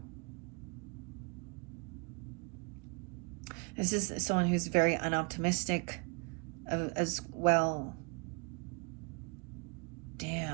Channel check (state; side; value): quieter; left; 33.4 dB